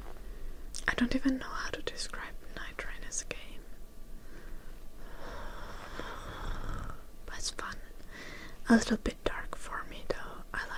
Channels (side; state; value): both; identical; correlation 1.00